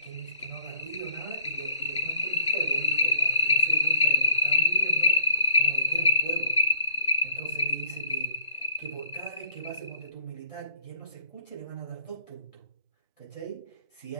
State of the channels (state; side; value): inverted; both; correlation -0.58